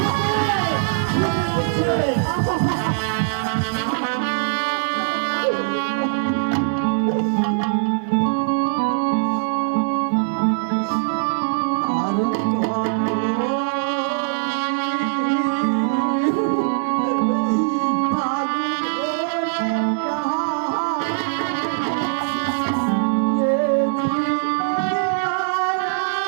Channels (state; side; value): silent; left; digital silence